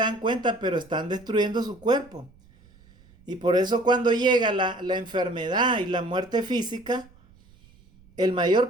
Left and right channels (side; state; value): right; noise; rumble, 27 dB below the sound